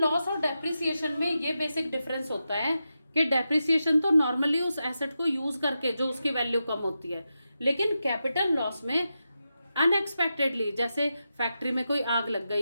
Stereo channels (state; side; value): inverted; both; correlation -0.89